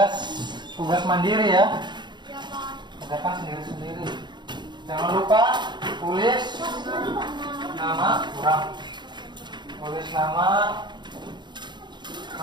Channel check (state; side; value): late; left; 0.22 ms